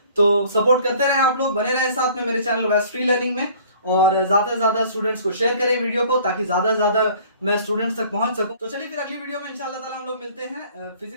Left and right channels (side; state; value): both; inverted; correlation -0.52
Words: तो सपोर्ट करते रहें, आप लोग बने रहें साथ में मेरे चैनल वेस्ट फ्री लर्निंग में, और ज्यादा से ज्यादा स्टूडेंट्स को शेयर करें वीडियो को, ताकि ज्यादा से ज्यादा मैं स्टूडेंट्स तक पहुंच सकूं। तो चलिए फिर अगली वीडियो में इंशाल्लाह ताला हम लोग मिलते हैं,